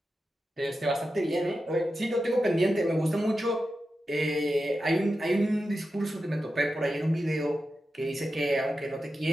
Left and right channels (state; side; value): normal; both; correlation 0.90